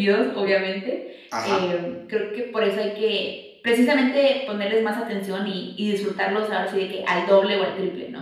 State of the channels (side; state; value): both; identical; correlation 1.00